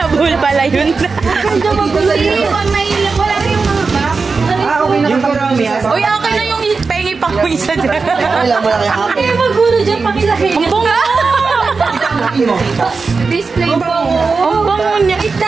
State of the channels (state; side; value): quieter; left; 4.5 dB